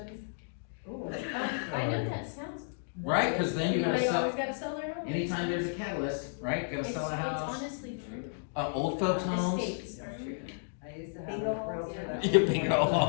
I know that sounds. right, cause then you gotta They sell, always gotta sell their home. anytime there's a catalyst, right, gotta It's sell a house, honestly true. old folks homes. Estates. I used to have Bingo a realtor that. Yeah, bingo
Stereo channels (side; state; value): right; silent; digital silence